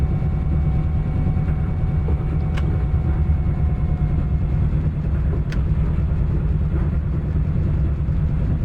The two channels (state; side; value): identical; both; correlation 1.00